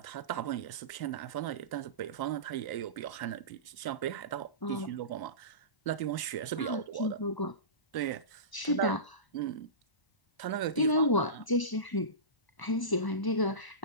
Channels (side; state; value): right; late; 1.0 ms